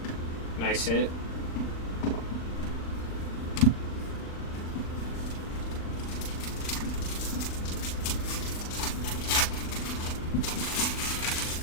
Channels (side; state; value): right; late; 39 ms